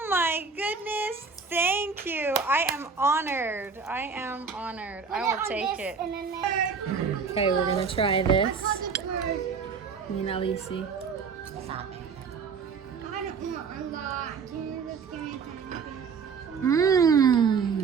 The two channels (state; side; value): quieter; left; 5.5 dB